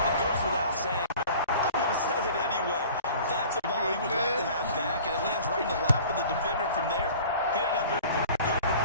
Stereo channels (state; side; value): inverted; both; correlation -0.45